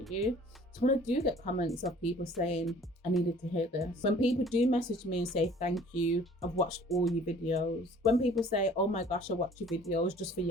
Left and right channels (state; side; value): normal; both; correlation 0.52